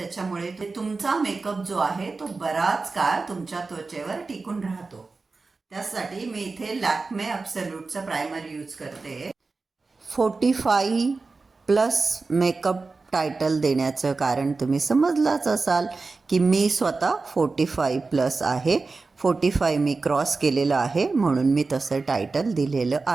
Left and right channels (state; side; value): quieter; left; 4.0 dB